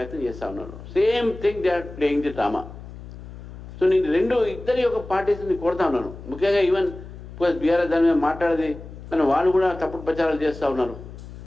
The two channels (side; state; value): left; noise; hum, 14 dB below the sound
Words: చేస్తూ ఉన్నారు. Same thing they are playing the drama. So నేను ఇద్దరి యొక్క పార్టీస్ని కోరుతా ఉన్నాను. ముఖ్యంగా ఈవెన్ బీఆర్ఎస్ దాని మీద మాట్లాడేది కానీ వాళ్ళు కూడా తప్పుడు ప్రచారాలు చేస్తూ ఉన్నారు.